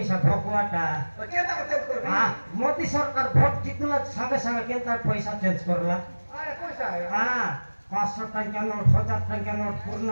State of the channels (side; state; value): both; inverted; correlation -1.00